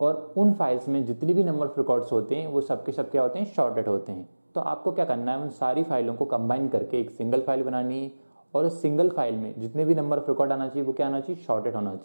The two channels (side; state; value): both; inverted; correlation -1.00